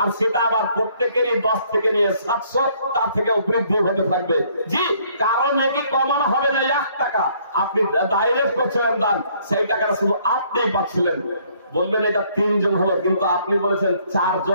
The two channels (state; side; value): inverted; both; correlation -0.64